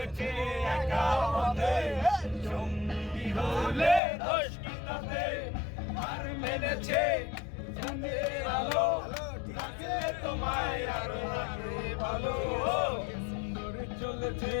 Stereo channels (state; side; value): drops out; right; at 4.0 s